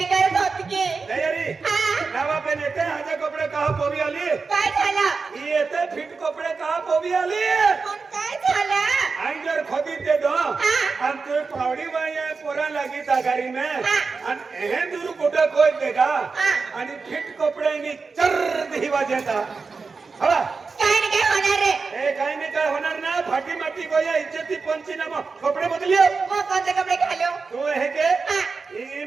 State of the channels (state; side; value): quieter; left; 4.6 dB